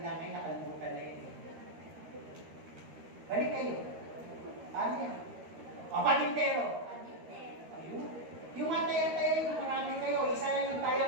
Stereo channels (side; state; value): left; late; 13 ms